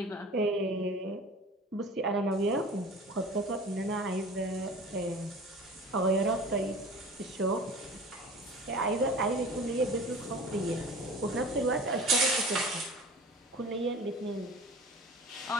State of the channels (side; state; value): both; normal; correlation 0.40